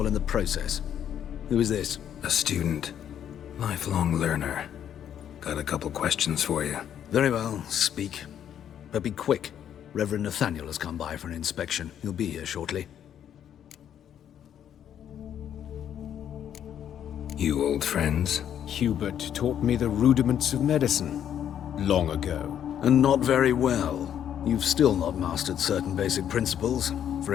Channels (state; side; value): quieter; right; 9.7 dB